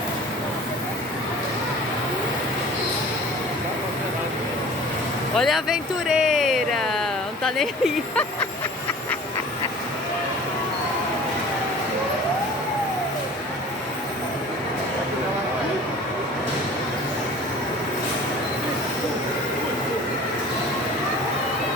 Olha a aventureira! Não tá nem aí.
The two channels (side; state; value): both; normal; correlation 0.44